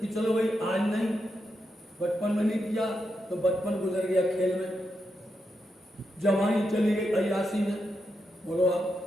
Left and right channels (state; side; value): normal; both; correlation 0.85